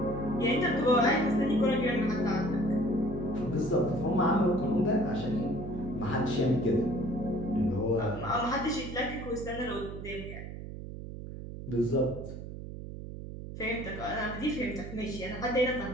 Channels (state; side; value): noise; right; hum, 10 dB below the sound